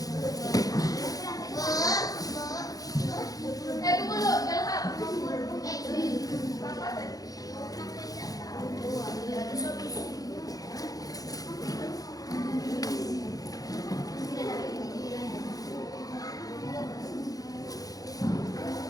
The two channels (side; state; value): right; late; 0.18 ms